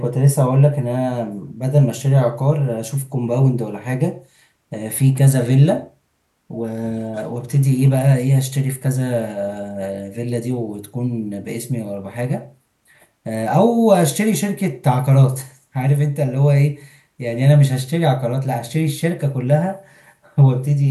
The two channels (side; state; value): both; identical; correlation 1.00